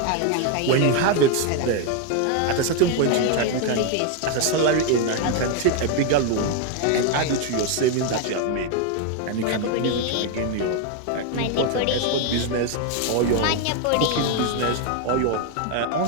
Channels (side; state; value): both; different; correlation 0.01